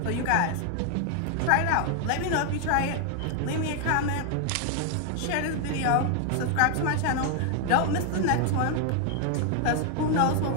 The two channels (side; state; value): both; different; correlation 0.00